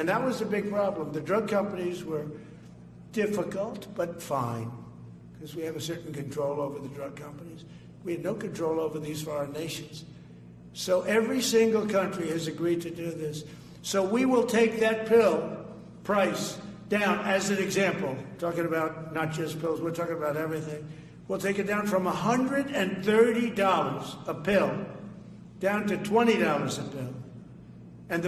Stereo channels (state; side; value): identical; both; correlation 1.00